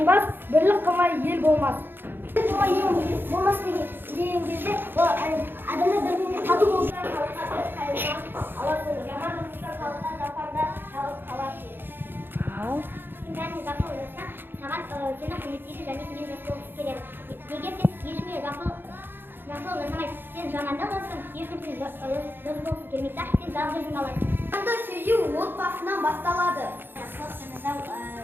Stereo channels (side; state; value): left; late; 0.10 ms